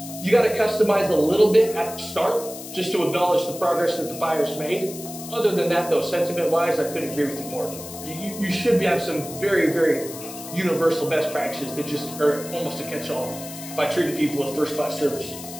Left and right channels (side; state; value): left; noise; hiss, 12 dB below the sound